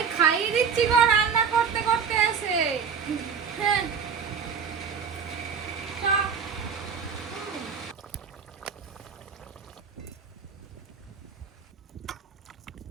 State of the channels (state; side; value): quieter; left; 6.5 dB